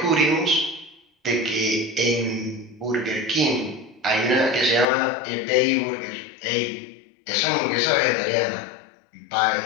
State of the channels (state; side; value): drops out; right; at 4.9 s